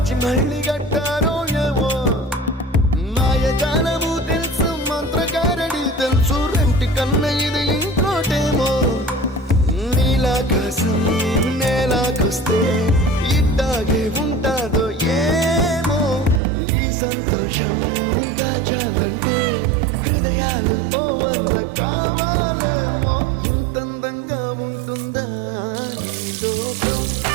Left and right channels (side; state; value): left; drops out; at 16.4 s